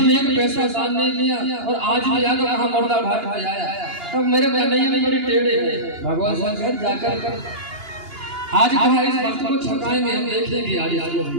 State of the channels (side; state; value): left; late; 2.9 ms